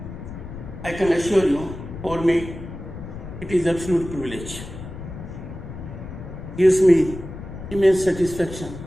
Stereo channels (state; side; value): noise; left; rumble, 11 dB below the sound